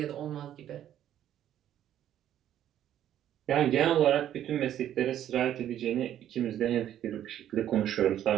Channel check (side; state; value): left; quieter; 11.2 dB